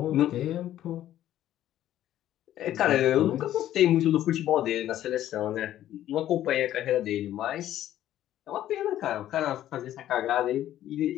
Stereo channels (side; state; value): right; quieter; 12.5 dB